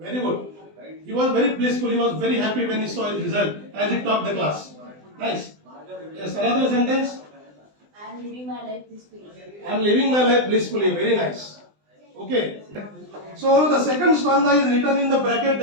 good. He was very blissful. He was very happy when he saw his result as he topped the class. Nice. Yes, another sentence. I am living my life peacefully. I am living my life blissfully. Very nice. Okay. So the second stanza is written in the bracket,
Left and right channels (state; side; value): late; left; 20 ms